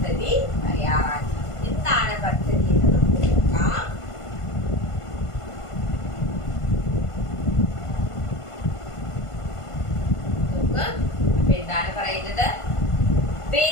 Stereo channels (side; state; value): right; late; 1.5 ms